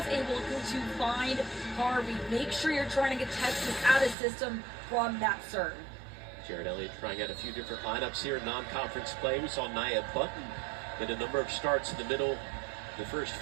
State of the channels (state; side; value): drops out; left; at 4.2 s